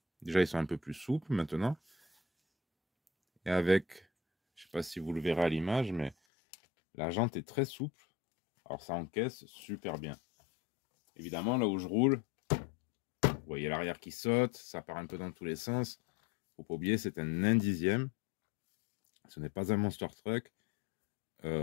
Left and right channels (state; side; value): drops out; right; at 6.2 s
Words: déjà ils sont un peu plus souples maintenant. Et avec, je sais pas si vous le verrez à l'image, mais la jante est très souple. Alors ça encaisse super bien. Évidemment, là où je roule, vous voyez l'arrière qui saute, ça part un peu dans tous les sens. Faut pas oublier, c'est un 1/10. Ce n'est pas un monster truck.